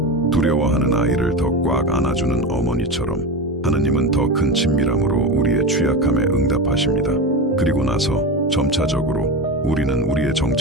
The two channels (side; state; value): both; normal; correlation 0.22